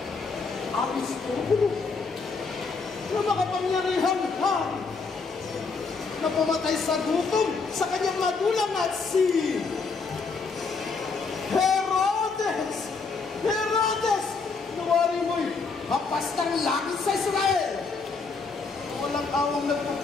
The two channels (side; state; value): right; quieter; 4.6 dB